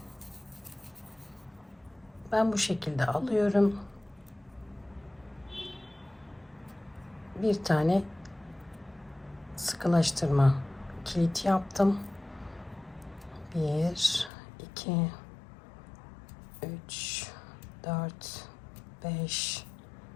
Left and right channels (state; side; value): drops out; right; at 14.3 s